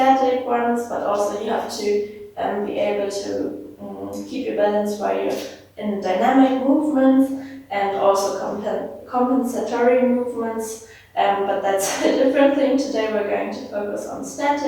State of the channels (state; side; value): identical; both; correlation 1.00